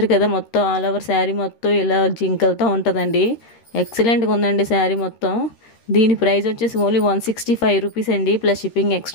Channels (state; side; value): late; right; 13 ms